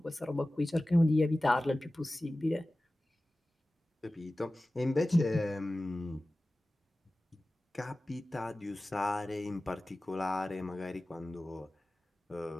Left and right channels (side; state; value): both; normal; correlation 0.96